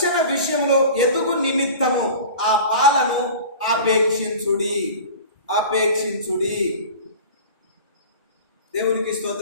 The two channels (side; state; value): both; inverted; correlation -0.38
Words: విషయంలో ఎదుగు నిమిత్తము ఆ పాలను ఆపేక్షించుడి. దేవునికి